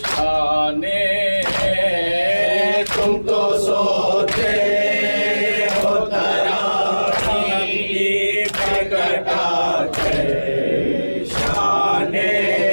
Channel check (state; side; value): inverted; both; correlation -1.00